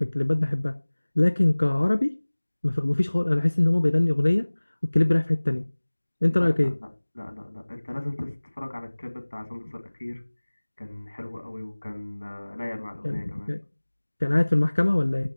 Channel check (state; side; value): inverted; both; correlation -1.00